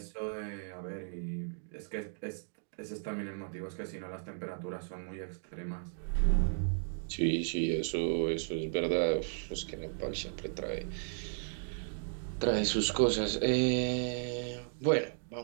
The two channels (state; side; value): silent; left; digital silence